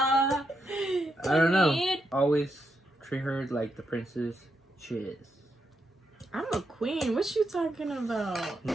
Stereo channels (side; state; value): both; normal; correlation 0.82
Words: I don't know. Always treat her like the princess she is. I'm a queen. What you talking about?